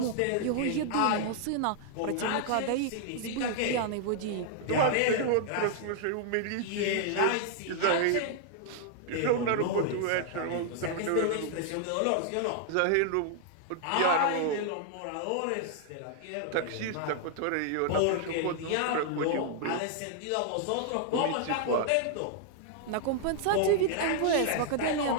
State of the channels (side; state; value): both; different; correlation 0.00